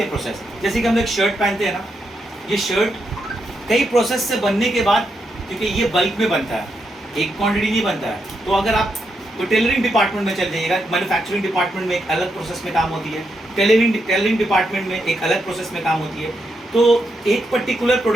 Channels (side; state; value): both; normal; correlation 0.82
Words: प्रोसेस, जैसे कि हम लोग शर्ट पहनते हैं ना, ये शर्ट कई प्रोसेस से बनने के बाद, क्योंकि ये बल्क में बनता है, एक क्वांटिटी नहीं बनता है, तो अगर आप तो टेलरिंग डिपार्टमेंट में चल जाइएगा, मैन्युफैक्चरिंग डिपार्टमेंट में एक अलग प्रोसेस में काम होती है, टेलरिंग डिपार्टमेंट में एक अलग प्रोसेस में काम होती है। तो एक पर्टिकुलर